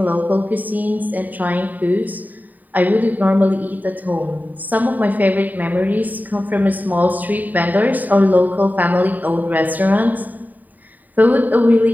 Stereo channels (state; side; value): late; left; 0.084 ms